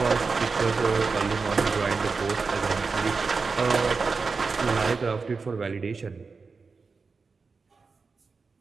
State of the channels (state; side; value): quieter; left; 4.6 dB